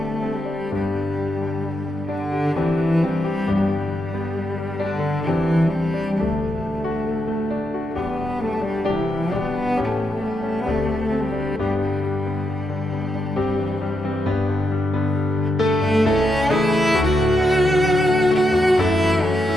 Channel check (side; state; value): both; normal; correlation 0.83